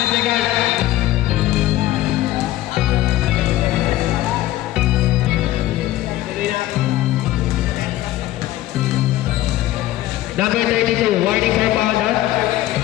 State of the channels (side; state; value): right; quieter; 15.2 dB